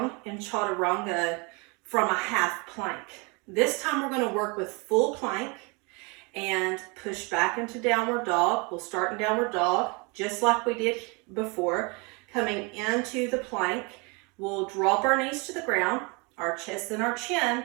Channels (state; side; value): quieter; left; 29.9 dB